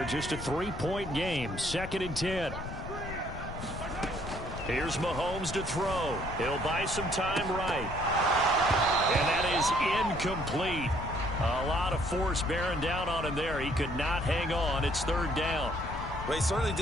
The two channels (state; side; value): noise; left; rumble, 8 dB below the sound